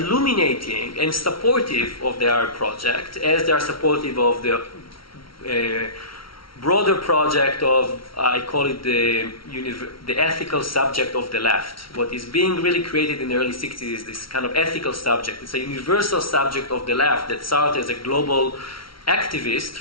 and supportive of the Arab project, as they are supportive of the broader project of, I call it the ethical subject of the left. What is being really created in the early 60s is this kind of ethical subject. It's a universal subject of the left that Sartre, as a global activist,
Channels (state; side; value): late; right; 0.74 ms